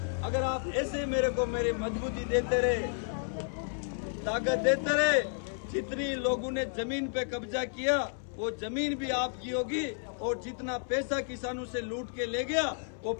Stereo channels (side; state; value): right; silent; 57 dB below the other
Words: अगर आप ऐसे मेरे को मेरी मजबूती देते रहे, ताकत देते रहे, जितनी लोगों ने जमीन पे कब्जा किया वो जमीन भी आपकी होगी, और जितना पैसा किसानों से लूट के ले गया वो